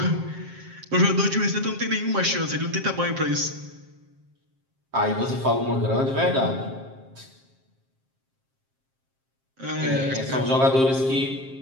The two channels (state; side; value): late; left; 7.5 ms